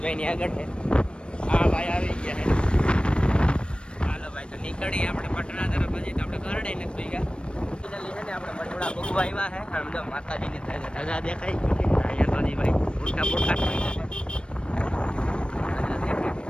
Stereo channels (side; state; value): right; late; 0.056 ms